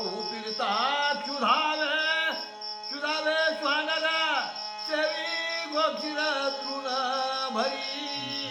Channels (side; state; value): both; identical; correlation 1.00